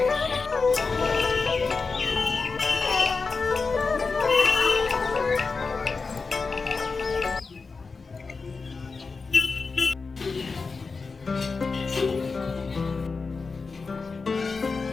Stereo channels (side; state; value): right; quieter; 4.5 dB